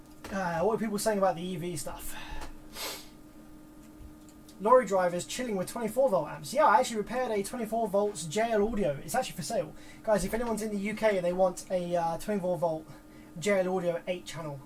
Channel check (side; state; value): both; identical; correlation 1.00